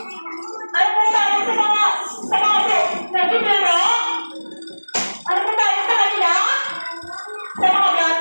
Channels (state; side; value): inverted; both; correlation -1.00